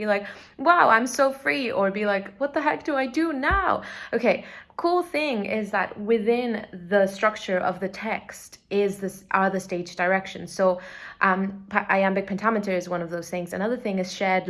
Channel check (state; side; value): identical; both; correlation 1.00